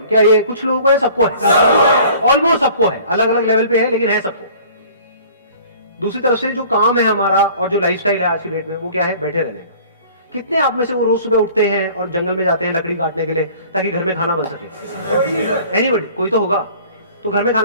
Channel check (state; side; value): inverted; both; correlation -0.49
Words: क्या ये कुछ लोगों को है, सबको है? ऑलमोस्ट सबको है, अलग अलग लेवल पे है, लेकिन है सबको। दूसरी तरफ से जो काम है हमारा और जो लाइफस्टाइल है आज की डेट में, वो क्या है? बैठे रहने का। कितने आप में से वो रोज सुबह उठते हैं और जंगल में जाते हैं लकड़ी काटने के लिए ताकि घर में खाना बन सके? एनीबॉडी? कोई तो होगा। तो घर में